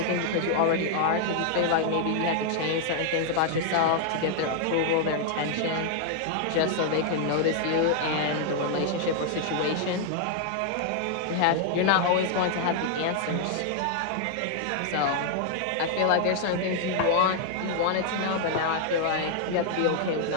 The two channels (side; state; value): both; different; correlation -0.01